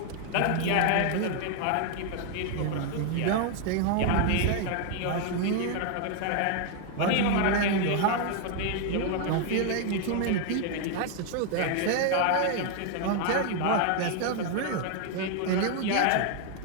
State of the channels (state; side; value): different; both; correlation 0.00